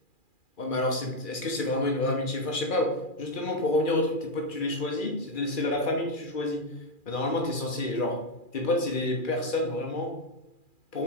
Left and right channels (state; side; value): late; right; 2.4 ms